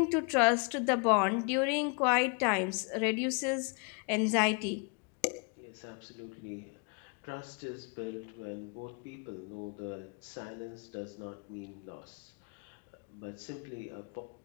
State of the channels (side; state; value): right; quieter; 35.8 dB